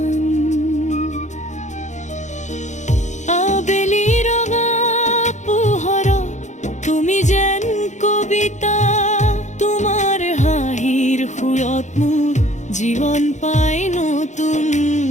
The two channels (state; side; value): late; right; 0.35 ms